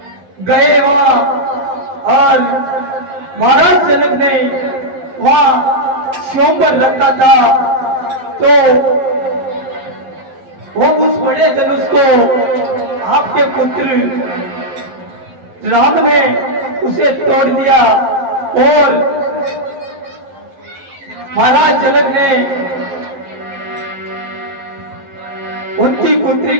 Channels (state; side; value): late; left; 11 ms